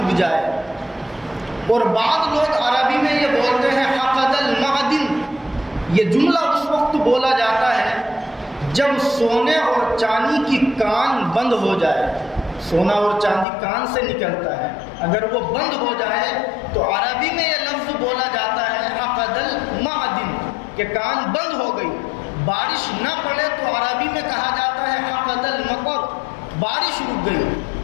جائے، اور بعض لوگ عربی میں یہ بولتے ہیں حقد المعدن، یہ جملہ اس وقت بولا جاتا ہے جب سونے اور چاندی کی کان بند ہو جائے، سونا اور چاندی کان سے نکلتا ہے، اگر وہ بند ہو جائے تو عربی میں یہ لفظ بولا جاتا ہے عقد المعدن، کہ کان بند ہو گئی۔ بارش نہ پڑے تو عربی میں کہا جاتا ہے عقد المطر، بارش رک گئی۔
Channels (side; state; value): right; drops out; at 13.5 s